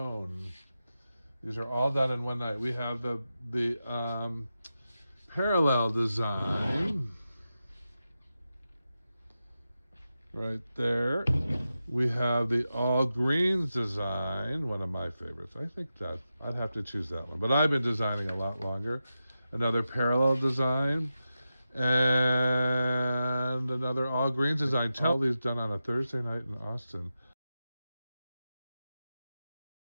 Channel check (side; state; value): both; inverted; correlation -0.91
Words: These are all done in one night. We have the parallel design right there. We have the all greens design, one of my favorites. I think that I'd have to choose that one, but I've been designing a lot longer. Another parallel design and another all greens design. All these done on a Thursday night in Austin.